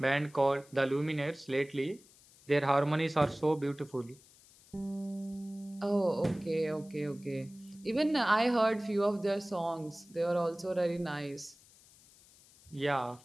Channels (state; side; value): noise; left; hiss, 26 dB below the sound